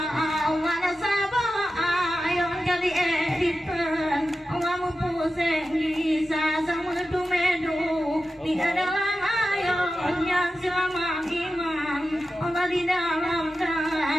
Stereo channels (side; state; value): both; normal; correlation 0.92